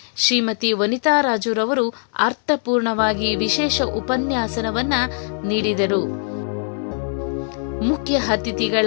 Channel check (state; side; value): silent; right; 59 dB below the other